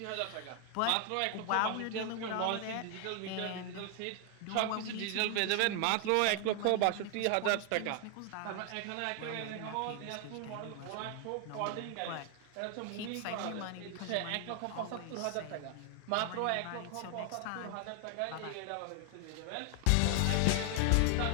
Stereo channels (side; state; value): both; different; correlation 0.00